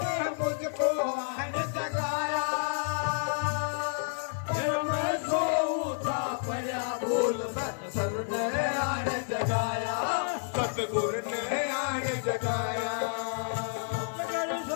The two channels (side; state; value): right; silent; 58 dB below the other